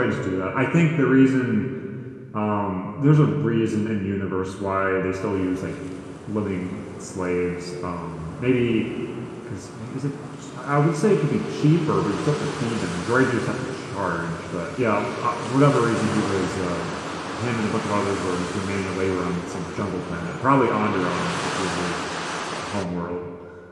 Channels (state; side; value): identical; both; correlation 1.00